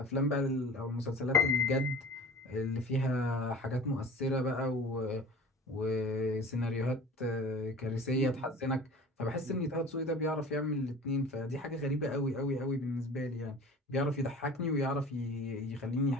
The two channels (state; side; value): normal; both; correlation 0.41